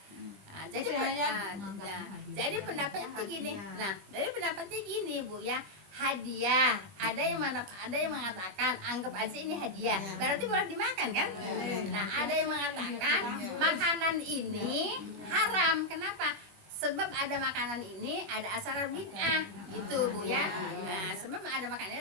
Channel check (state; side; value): late; left; 20 ms